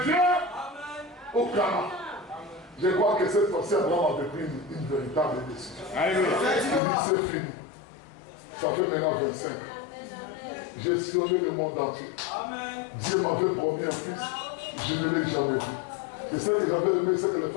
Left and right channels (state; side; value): drops out; right; at 6.8 s